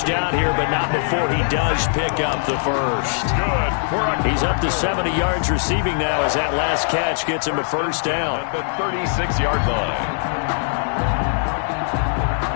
here, but not before he does pick up the first. He's up to 70 yards receiving now as that last catch gets him a first down. At the 36-yard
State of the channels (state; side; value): silent; right; digital silence